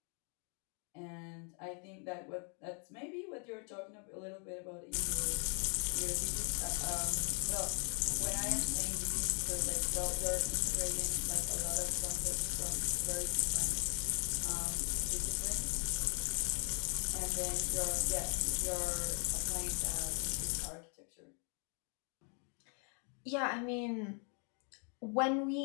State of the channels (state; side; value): quieter; right; 39.5 dB